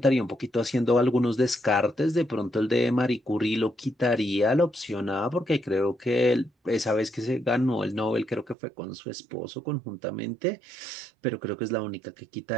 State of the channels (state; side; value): drops out; left; at 8.6 s